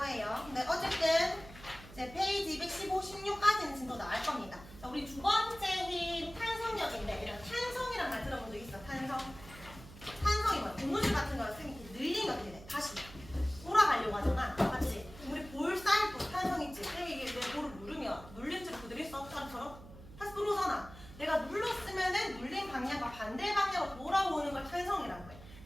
근데 어쨌든 이제 페이지 215, 16까지는 진도 나올 겁니다. 자, 우리 두 번째 힘 탄성력인데 이런 탄성이란 말 들어본 적 있어? 탄성이 뭐야? 고무줄 같은 거를 쓰면 이렇게 늘리면 어떻게 돼? 다시 돌아가려고 하잖아. 맞지? 우리 볼 쌓일 때 탄성 있지? 이게 내 볼을 누르면 눌린 채로 그대로 있어. 사람처럼 다시 들어오잖아. 내가 눌렀으면은 눌린 방향과 반대 방향으로 돌아오는 걸 탄성이라고 해.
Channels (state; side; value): noise; right; hum, 17 dB below the sound